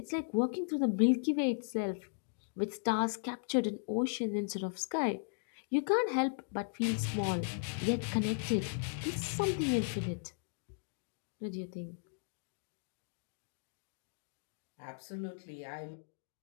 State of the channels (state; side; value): silent; right; digital silence